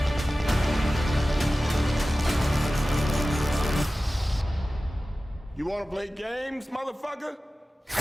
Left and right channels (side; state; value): both; normal; correlation 0.96